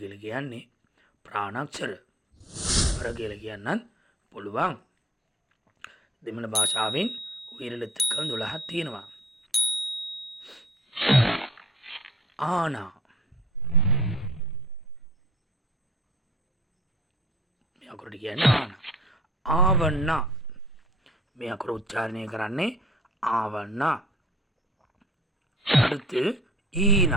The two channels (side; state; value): both; normal; correlation 0.52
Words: කියන්නේ ප්‍රාණාක්ෂර. අර කියලා කියන්නත් පුළුවන්. දෙමළ භාෂාවෙන් උயிරෙழுத்துக்கள் 12ක් තියෙනවා. ආනා මේ අකුරට කියන්නේ ආනා. ආවන්නා මේ අකුර උච්චාරණය කරන්නේ ආවන්නා. அடுத்து